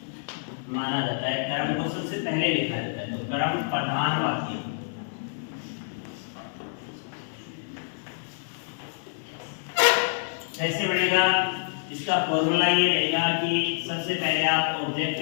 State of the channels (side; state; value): right; silent; digital silence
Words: माना जाता है, कर्म को सबसे पहले लिखा जाता है, तो कर्म प्रधान वाक्य। कैसे बनेगा, इसका फॉर्मूला ये रहेगा कि सबसे पहले आप ऑब्जेक्ट